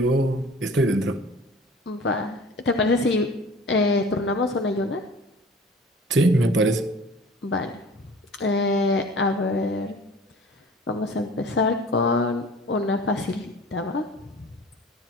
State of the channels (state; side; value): normal; both; correlation 0.44